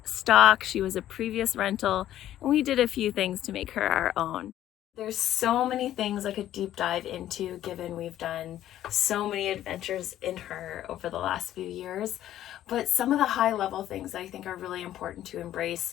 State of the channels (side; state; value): right; quieter; 12.5 dB